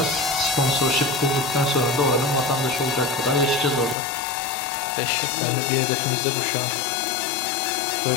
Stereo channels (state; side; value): drops out; right; at 4.0 s